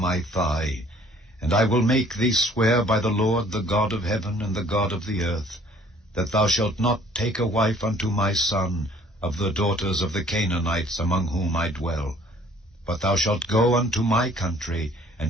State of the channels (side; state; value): both; normal; correlation 0.56